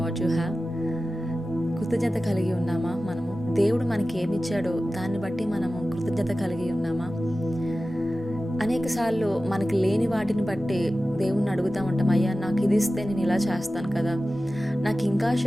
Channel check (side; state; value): both; normal; correlation 0.95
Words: what you have? కృతజ్ఞత కలిగి ఉన్నామా? మనము దేవుడు మనకి ఏమిచ్చాడో దాన్ని బట్టి మనము కృతజ్ఞత కలిగి ఉన్నామా? అనేకసార్లు మనకి లేని వాటిని బట్టి దేవుణ్ణి అడుగుతూ ఉంటాం, అయ్యా నాకు ఇది ఇస్తే నేను ఇలా చేస్తాను కదా, నాకు ఇంకా